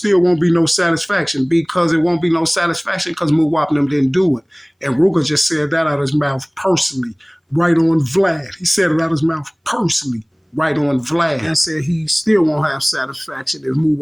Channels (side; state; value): both; identical; correlation 1.00